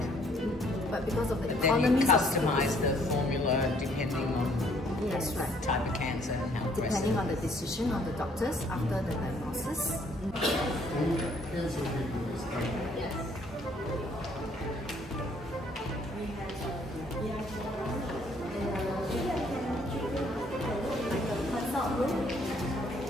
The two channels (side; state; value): both; normal; correlation 0.63